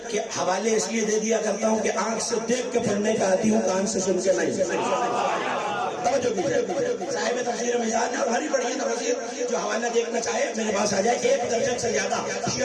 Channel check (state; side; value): identical; both; correlation 1.00